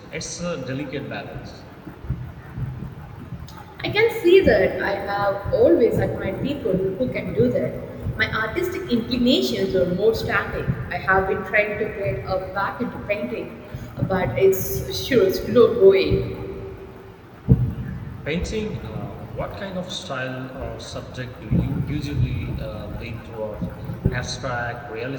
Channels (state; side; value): identical; both; correlation 1.00